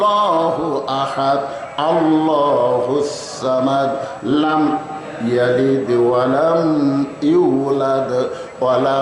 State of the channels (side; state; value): both; identical; correlation 1.00